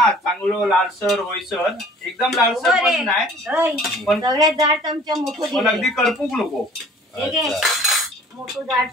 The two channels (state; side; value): normal; both; correlation 0.51